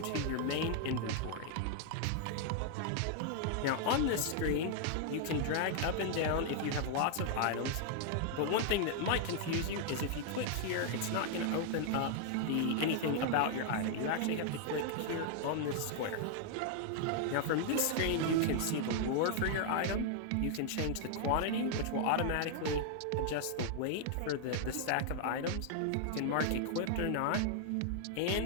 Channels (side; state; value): both; different; correlation 0.00